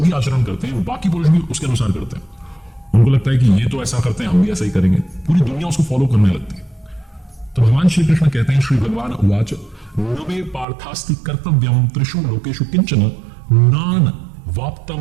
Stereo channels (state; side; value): drops out; left; at 10.7 s